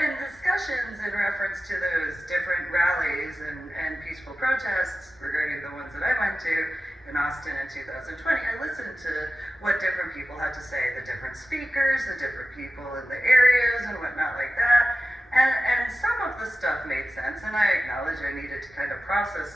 discussions in reference to those different rallies and peaceful protests regarding the ones that I went to in Austin in 2020, I listened to what different people had to say, the different speakers, the different people in the areas and whatnot like that. And some of the stuff made sense, and I acknowledge I needed to kind of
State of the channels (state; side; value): normal; both; correlation 0.94